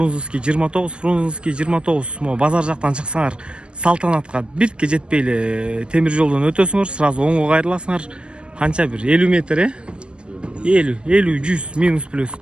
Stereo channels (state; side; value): late; left; 0.056 ms